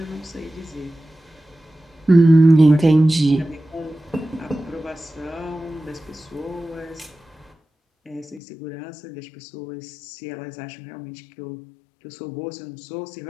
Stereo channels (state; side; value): drops out; right; at 8.4 s